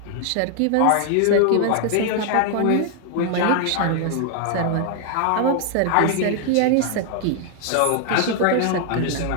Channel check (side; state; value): both; different; correlation 0.00